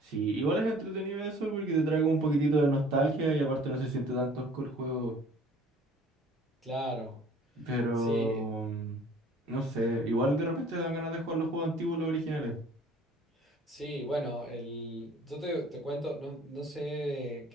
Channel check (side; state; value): both; normal; correlation 0.52